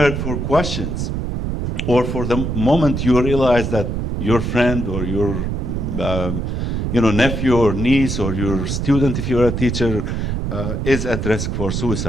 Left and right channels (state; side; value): noise; right; rumble, 2 dB below the sound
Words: for questions, or for the moment you realize that your friend or your nephew or niece or your student, if you're a teacher, is at risk for